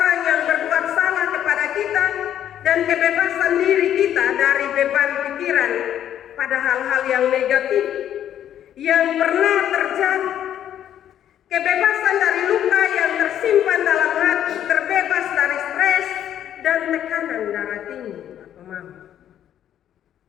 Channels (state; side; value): quieter; right; 10.6 dB